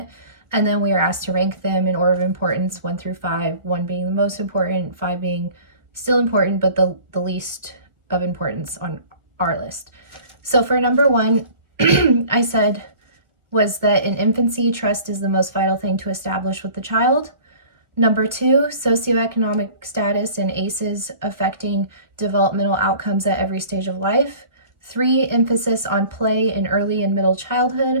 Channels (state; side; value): late; left; 1.6 ms